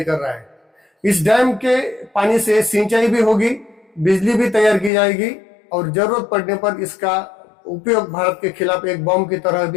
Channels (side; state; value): right; drops out; at 4.9 s